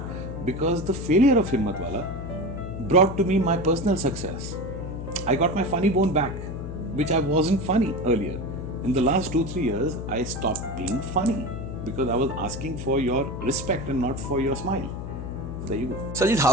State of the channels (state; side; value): noise; left; hum, 7 dB below the sound